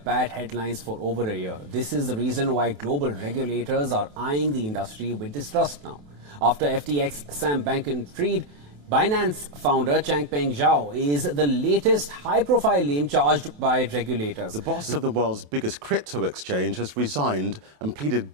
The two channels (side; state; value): left; late; 28 ms